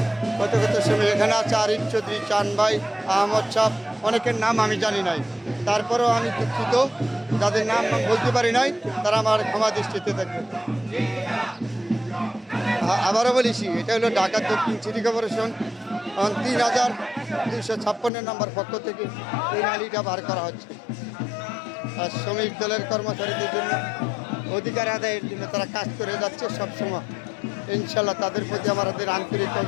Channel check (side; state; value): right; drops out; at 18.1 s